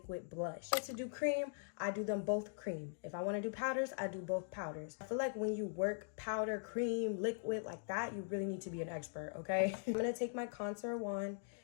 blush. To do cream, I do them both cream. If I want to do powders, I do both powders. I feel like when you work powder, cream, liquid like that, you really need to be an expert, okay? I'm going to take my contour wand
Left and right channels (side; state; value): right; silent; digital silence